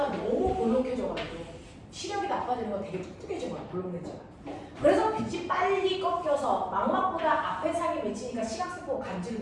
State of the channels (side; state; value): both; identical; correlation 1.00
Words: 너무 볼록해져가지고 시력이 나빠지는 건 되게 뚱뚱해진 거야, 볼록 렌즈가. 그래서 빛이 빨리 꺾여서 망막보다 앞에 상이 맺히니까 시각세포가 감지를